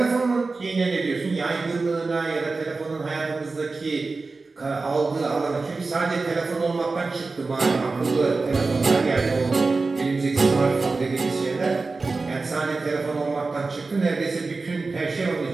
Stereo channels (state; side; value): quieter; left; 3.9 dB